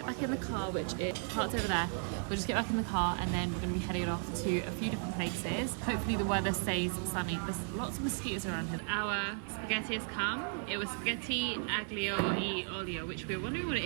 back in the car, which is parked over there. We'll just get back in the car and then we're gonna be heading off to a few different places. Hopefully the weather stays sunny. There's lots of mosquitoes around here. Our spaghetti has come. It was spaghetti aglio e olio, which we were wondering what it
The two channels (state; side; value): silent; left; 54 dB below the other